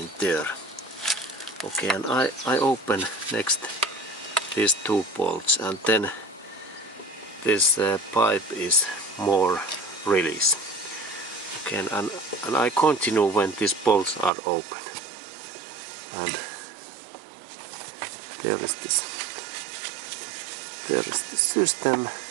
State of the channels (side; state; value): left; drops out; at 14.3 s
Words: there. Okay, and I open next these two bolts, and then this pipe is more release. Okay, and I continue when these bolts are open. And there is the system,